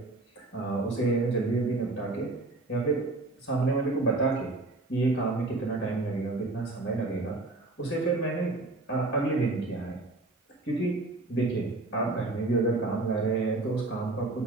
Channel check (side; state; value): left; quieter; 3.1 dB